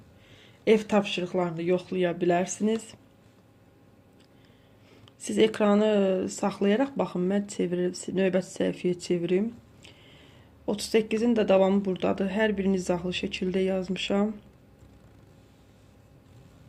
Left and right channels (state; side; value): identical; both; correlation 1.00